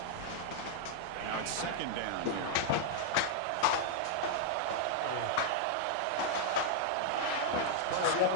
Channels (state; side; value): different; both; correlation -0.01